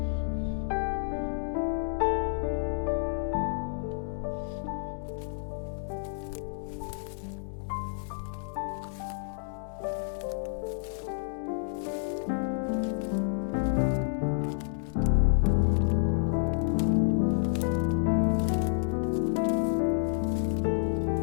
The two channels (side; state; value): right; silent; digital silence